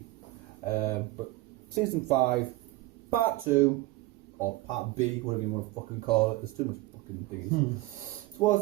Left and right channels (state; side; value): quieter; left; 18.8 dB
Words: But season 5, part 2, or part B, whatever you want to fucking call it. There's too much fucking things.